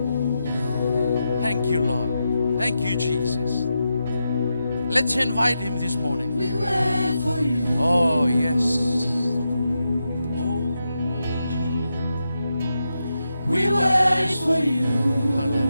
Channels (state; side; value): inverted; both; correlation -0.87